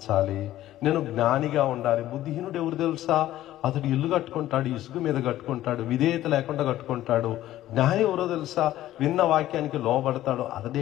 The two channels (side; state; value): right; quieter; 14.0 dB